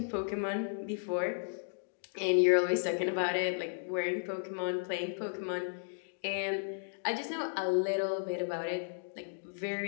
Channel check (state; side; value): silent; right; digital silence